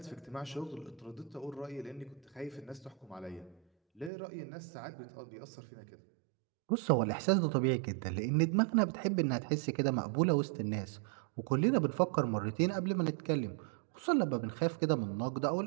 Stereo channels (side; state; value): left; drops out; at 4.1 s